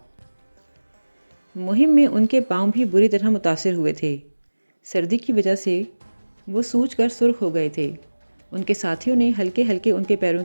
مہم میں ان کے پاؤں بھی بری طرح متاثر ہوئے تھے۔ سردی کی وجہ سے وہ سوج کر سرخ ہو گئے تھے۔ ان کے ساتھیوں نے ہلکے ہلکے ان کے پیروں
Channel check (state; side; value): inverted; both; correlation -1.00